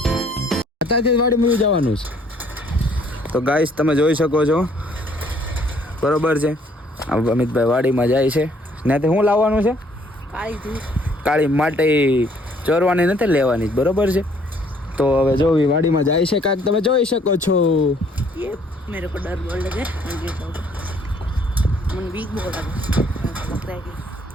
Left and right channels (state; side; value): normal; both; correlation 0.63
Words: અત્યારથી વાડીમાં જવાનું છે. તો ગાઈસ તમે જોઈ શકો છો, બરોબર છે. અમિતભાઈ વાડીમાં જાય છે. ત્યાંથી શું લાવવાનું છે? કાળી માટી ચોરવાની નથી, લેવાની, બરોબર છે. તો હવે જો વાડીમાં જાય છે કાંઈક તમે જોઈ શકો છો. ये मेरे को डर बोल लगे मन वीक बोल लगा लग रहा है कि